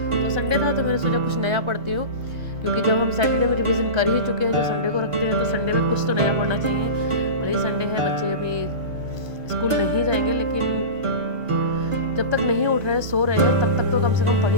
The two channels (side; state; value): left; late; 1.5 ms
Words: तो संडे था तो मैंने सोचा कुछ नया पढ़ती हूँ, क्योंकि जब हम सैटरडे में रिवीजन कर ही चुके हैं, जो संडे को रखते हैं, तो संडे में कुछ तो नया पढ़ना चाहिए। वही संडे है, बच्चे अभी स्कूल नहीं जाएंगे, लेकिन जब तक नहीं उठ रहे हैं, सो रहे हैं, तब तक तो कम से कम पढ़